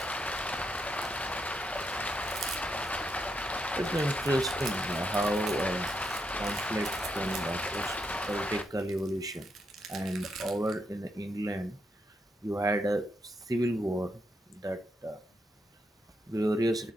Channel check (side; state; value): both; normal; correlation 0.80